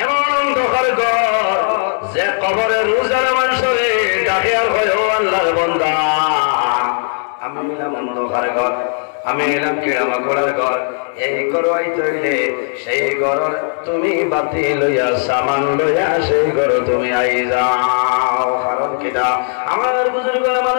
দখল ঘর যে কবরের রোজার মানুষরে ডাকে আর হয় ও আল্লাহর বান্দা আমি এলাম অন্ধকার ঘর আমি এলাম কেড়ামা করার ঘর এই ঘর আইতে সেই ঘর তুমি বাতি লইয়া সামান লইয়া সেই ঘর তুমি আই যাও কারণ কিনা আমার বুজুর্গ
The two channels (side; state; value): right; silent; 61 dB below the other